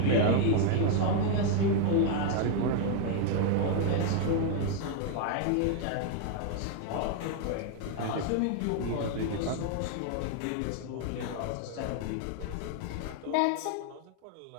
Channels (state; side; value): different; both; correlation 0.00